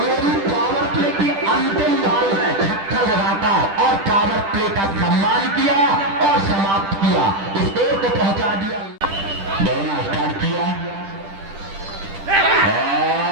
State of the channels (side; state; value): left; late; 10 ms